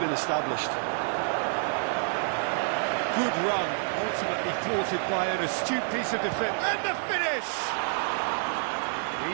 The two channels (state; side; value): silent; left; 59 dB below the other